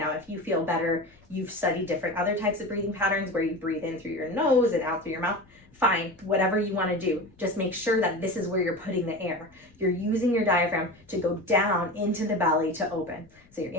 if you feel better, you've studied different other types of breathing patterns where you breathe in through your nose and out through your mouth, fine, whatever you want to do. Just make sure that this is where you're putting the air. You're using your diaphragm to go down into the belly to open. So you're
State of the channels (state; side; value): noise; left; rumble, 30 dB below the sound